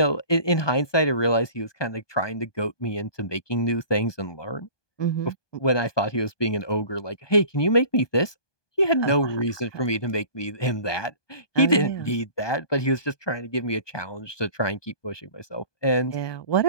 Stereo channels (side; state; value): right; late; 1.2 ms